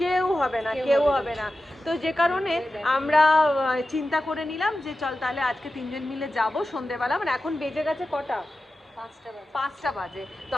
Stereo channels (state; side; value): normal; both; correlation 0.93